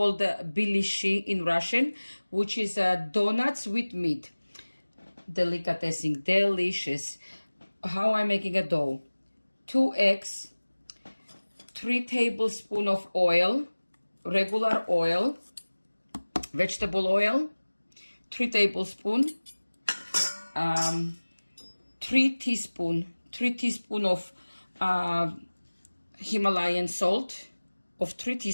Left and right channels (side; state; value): both; inverted; correlation -1.00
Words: Biliyashi in Russian, which is donuts with meat. Delicatessen, delicious. How I'm making a dough. 2 eggs, 3 tablespoons of oil, regular oil, vegetable oil, 3 tablespoons, 3 teaspoons of Himalayan salt of 3